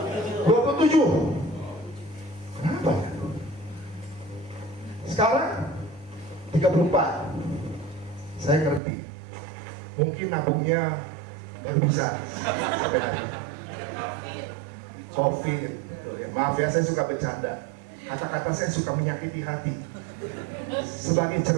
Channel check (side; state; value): left; drops out; at 8.8 s